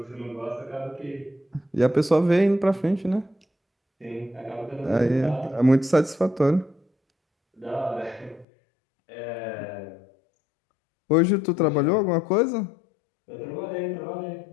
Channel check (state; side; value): drops out; right; at 8.5 s